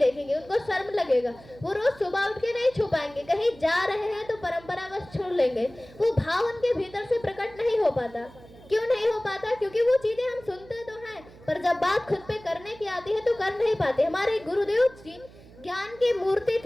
उनको शर्म लगेगा। वो रोज सुबह उठ के नहीं छू पाएंगे, कहीं जा रहे हैं तो परंपरा बस छोड़ लेंगे। वो भाव उनके भीतर से प्रकट नहीं हो पाता। क्यों नहीं हो पाता? क्योंकि वो चीजें हम सुनते तो हैं, पर जब बात खुद पे करने की आती है तो कर नहीं पाते। हमारे गुरुदेव जी ज्ञान की मूर्ति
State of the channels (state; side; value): noise; right; hum, 22 dB below the sound